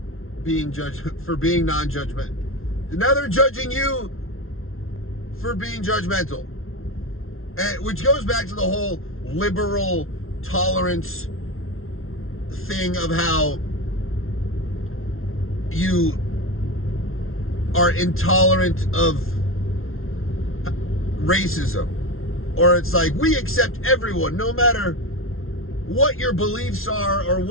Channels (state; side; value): late; right; 0.61 ms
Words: being being non-judgmental. Now they're judging you for being judgmental. And which goes back to the whole liberal tolerance thing of how you are intolerant of racism. Or it's like, we accept everyone, no matter what your beliefs are or